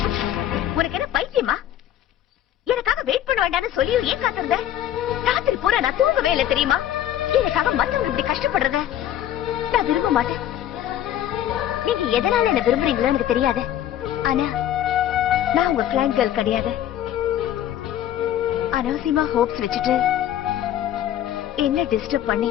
உனக்கு என்ன பைத்தியமா? எனக்காக வெயிட் பண்ண வேண்டாம்னு சொல்லி ஏன் காத்திருந்த? ராத்திரி பூரா நான் தூங்கவே இல்லை தெரியுமா? எனக்காக மத்தவங்க இப்படி கஷ்டப்படுறத நான் விரும்ப மாட்டேன். நீங்க எதனால என்ன விரும்புறீங்களோ எனக்கு தெரியாது. ஆனா நான் உங்க கிளைண்ட் கேர்ள் கிடையாது. அனாவசியமா ஹோப்ஸ் வச்சுட்டு என்ன டிஸ்டர்ப் பண்ணி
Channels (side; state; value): right; quieter; 11.6 dB